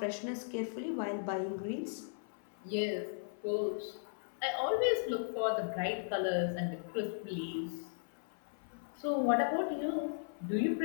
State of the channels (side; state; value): right; silent; 53 dB below the other